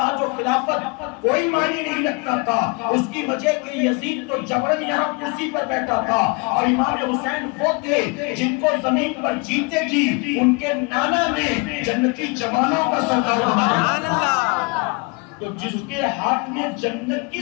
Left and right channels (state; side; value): quieter; right; 30.0 dB